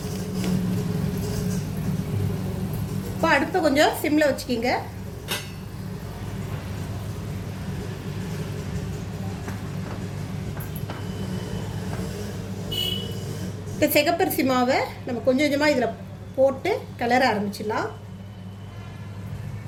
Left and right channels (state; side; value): identical; both; correlation 1.00